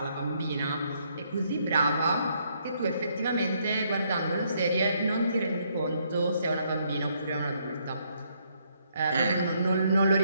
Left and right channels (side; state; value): both; inverted; correlation -0.72